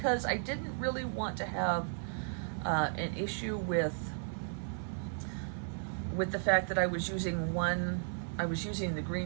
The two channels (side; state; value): left; silent; 55 dB below the other